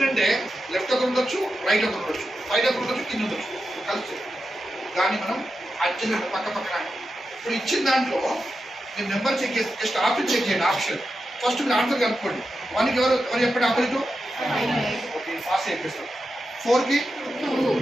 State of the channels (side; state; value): both; normal; correlation 0.89